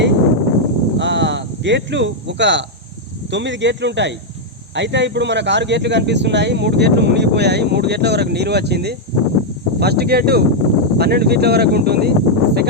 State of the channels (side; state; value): both; normal; correlation -0.02